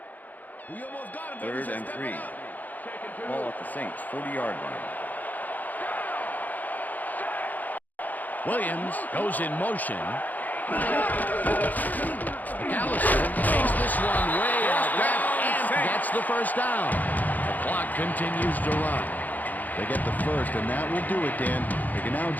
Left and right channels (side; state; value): right; late; 0.082 ms